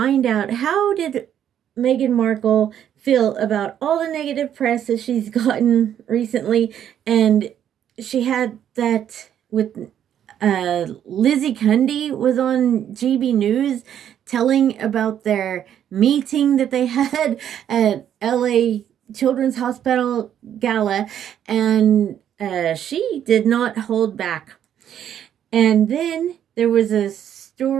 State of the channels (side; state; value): left; quieter; 9.9 dB